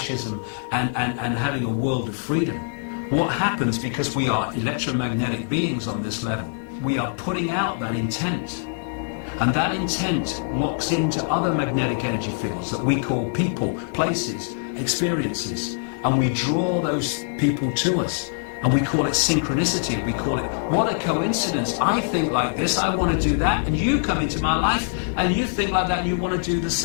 and having a world of freedom. What happens, because we are electromagnetic beings on this level, we are putting out that intent. And that intent locks into other magnetic energy fields that we call people, places, experiences, and we draw those people to us. And we call it synchronicity. We call it, what a coincidence. I think like this, I want to do that, and you come into my life, and you think like that, and you want to do the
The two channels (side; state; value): right; silent; 63 dB below the other